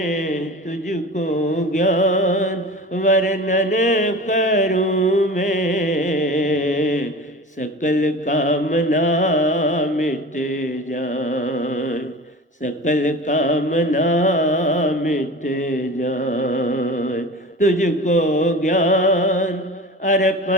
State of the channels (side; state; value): both; normal; correlation 0.34